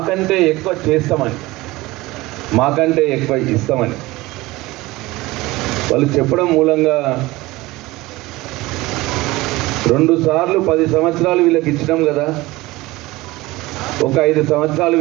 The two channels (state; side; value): quieter; left; 19.9 dB